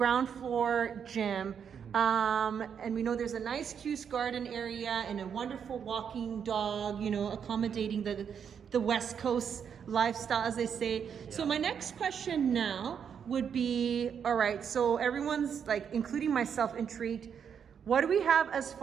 floor gym. And we know there's a nice Cuse garden area and a wonderful walking dog, you know, accommodating the West Coast lifestyle, as they say. Yeah. So my next question now would be, all right, so everyone's like, including myself, intrigued. What do we have as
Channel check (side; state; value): left; quieter; 7.5 dB